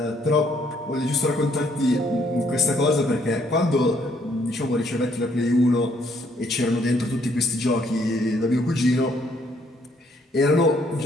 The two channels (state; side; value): normal; both; correlation 0.68